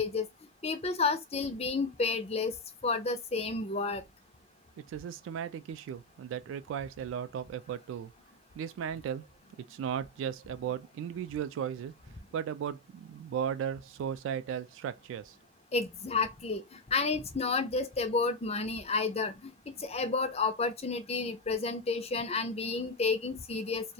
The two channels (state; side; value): normal; both; correlation 0.05